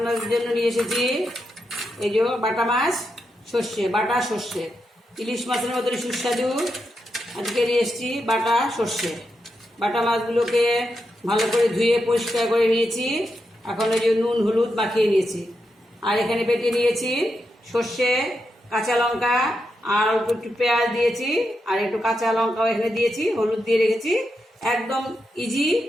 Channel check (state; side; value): normal; both; correlation 0.85